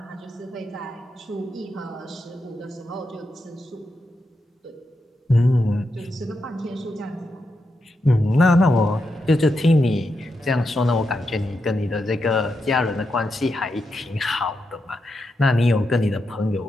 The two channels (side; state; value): both; normal; correlation 0.85